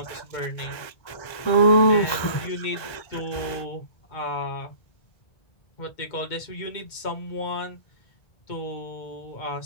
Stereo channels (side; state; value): right; late; 1.3 ms